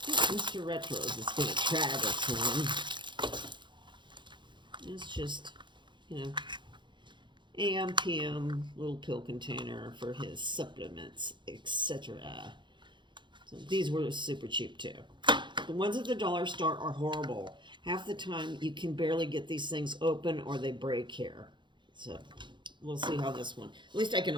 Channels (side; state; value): left; late; 0.23 ms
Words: Mr. Retros is going to try this one. It's just, AM, PM, little pill container for his supplements, etc. So these were super cheap too. The ones at the dollar store are horrible. Half the time you can barely get these things open or they break here. So we'll see how this one, at least I can